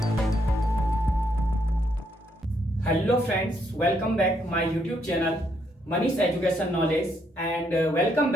Hello friends, welcome back my YouTube channel Manish education knowledge and welcome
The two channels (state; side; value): normal; both; correlation 0.74